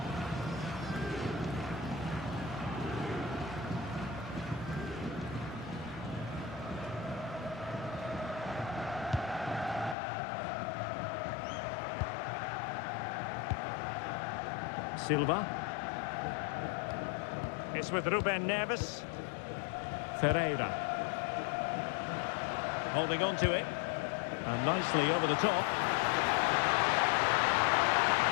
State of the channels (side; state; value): right; drops out; at 10.0 s